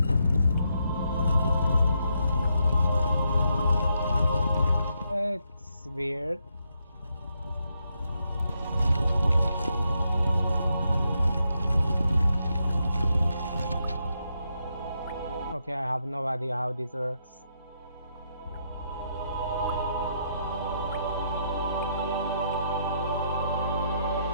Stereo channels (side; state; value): both; inverted; correlation -0.79